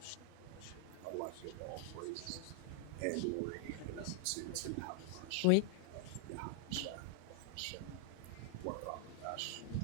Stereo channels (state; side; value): different; both; correlation -0.01